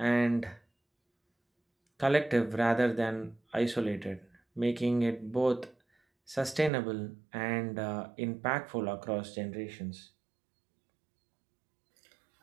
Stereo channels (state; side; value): drops out; left; at 6.7 s